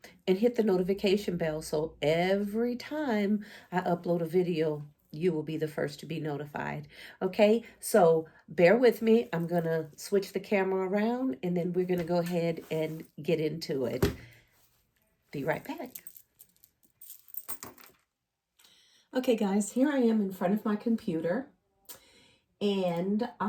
and hit the notification bell so every time I upload a video, you will be the first to be notified. Okay, so bear with me. I'm going to switch the camera around and then we're going to go ahead and get into it. Be right back. Okay, guys, here I am in front of my computer. And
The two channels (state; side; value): identical; both; correlation 1.00